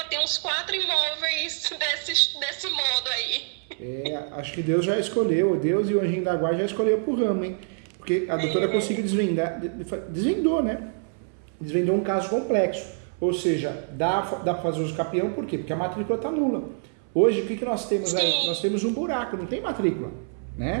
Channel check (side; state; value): left; silent; 61 dB below the other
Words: tem uns 4 imóveis desse modo aí. Acho que Deus já escolheu, Deus e o anjinho da guarda já escolheu pro ramo, hein? Porque a doutora conseguiu desvendou, né? Desvendou um caso complexo. Ou seja, dá para fazer uso capião, por quê? Porque a matrícula está nula. Hoje, o que nós temos aí? Nós temos um buraco, não tem matrícula,